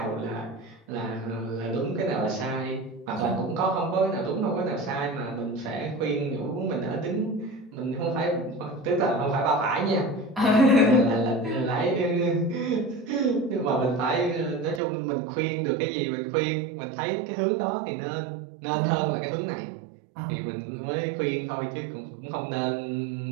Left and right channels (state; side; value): drops out; left; at 14.8 s